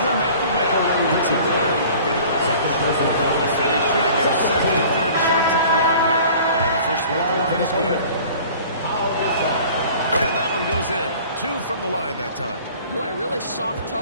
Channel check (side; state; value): both; inverted; correlation -0.47